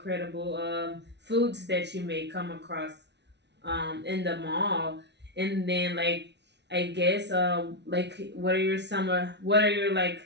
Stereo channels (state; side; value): late; left; 0.50 ms